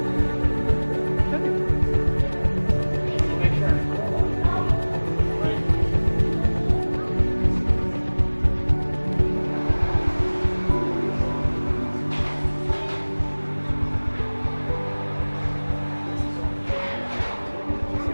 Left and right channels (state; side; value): inverted; both; correlation -1.00